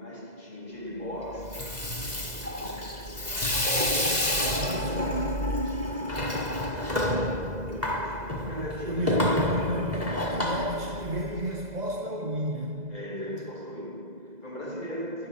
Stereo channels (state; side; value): late; left; 2.0 ms